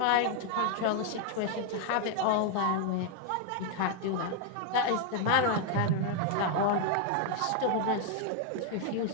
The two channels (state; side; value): different; both; correlation 0.00